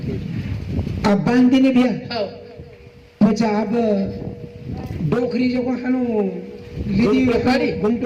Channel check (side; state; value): both; identical; correlation 1.00